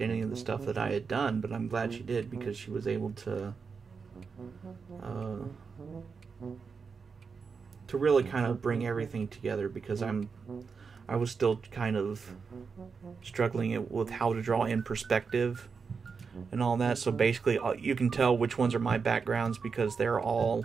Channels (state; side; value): quieter; left; 5.4 dB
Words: any of the stuff that I had done, but I'm glad she did, because she was able to really kind of bring everything together, because I was still kind of struggling with how to draw in perspective and all that. So basically, you can tell which ones are my backgrounds because they're all